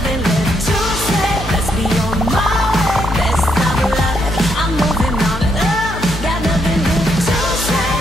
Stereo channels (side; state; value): both; normal; correlation 0.76